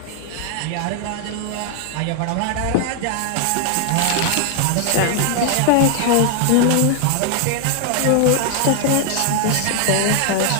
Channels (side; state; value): both; different; correlation 0.00